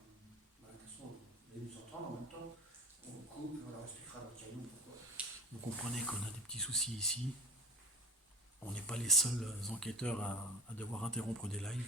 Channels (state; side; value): normal; both; correlation 0.35